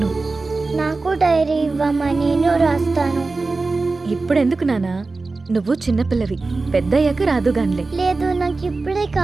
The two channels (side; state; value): left; quieter; 3.7 dB